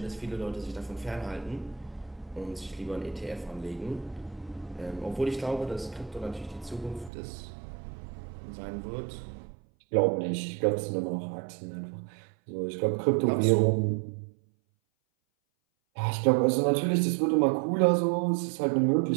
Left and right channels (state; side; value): drops out; left; at 7.1 s